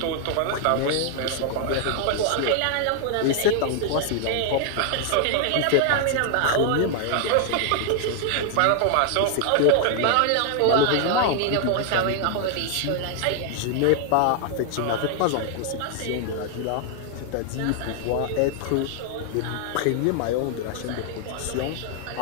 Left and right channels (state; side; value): different; both; correlation 0.00